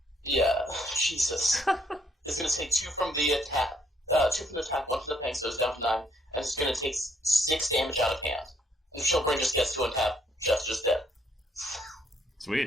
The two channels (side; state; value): both; normal; correlation 0.69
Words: Yeah, Jesus. It's going to take 2 from the attack, 2 from the attack, 1 from the pang, so it's down to 9, and it's going to take 6 damage out of hand. And if Chillbrain just gets to untap, Chef's just dead.